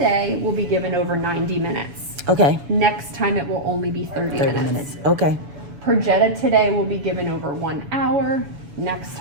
will be given over 90 minutes. Okay. Next time it will only be 30 minutes. Okay. Perjeta today will be given over 1 hour. Next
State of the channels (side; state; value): left; late; 7.0 ms